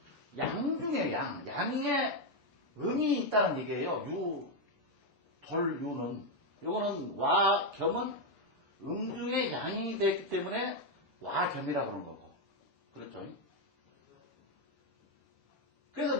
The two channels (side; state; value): right; late; 6.9 ms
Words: 양중의 양의 음이 있다는 얘기예요. 유는 요거는 와 겸은 음중의 양이 됐기 때문에 와 겸이라고 그러는 거고. 그렇죠? 그래서